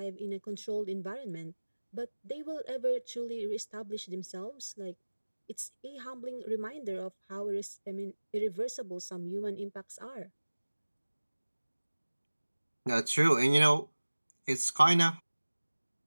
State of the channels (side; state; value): both; inverted; correlation -1.00